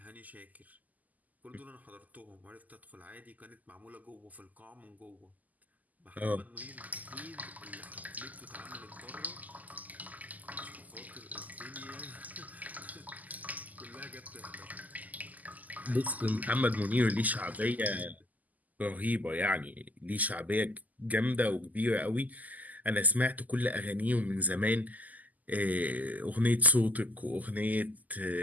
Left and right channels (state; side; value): late; left; 0.079 ms